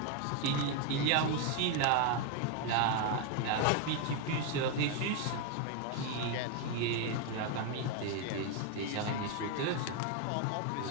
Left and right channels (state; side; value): different; both; correlation 0.01